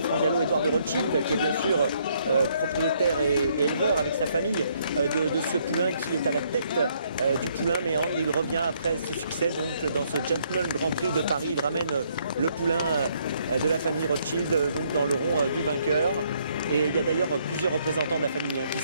France Gallo, Édouard de Rothschild, qui est bien sûr propriétaire et éleveur avec sa famille de ce poulain qui est à la tête du poulain Méandre. Il revient après ce succès donc dans ce Gentleman Grand Prix de Paris. Il ramène le poulain de la famille Rothschild donc dans le rond du vainqueur. Et il y a d'ailleurs plusieurs représentants de la famille qui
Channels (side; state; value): both; inverted; correlation -0.69